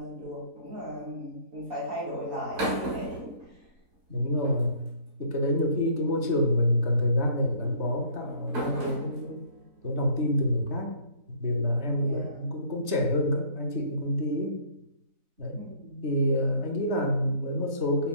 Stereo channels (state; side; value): late; left; 3.9 ms